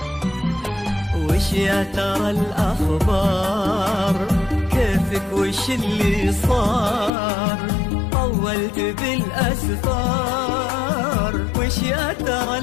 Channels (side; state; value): right; drops out; at 7.1 s